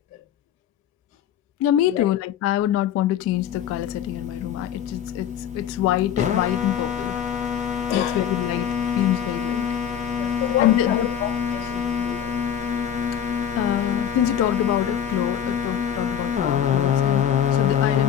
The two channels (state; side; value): quieter; right; 9.4 dB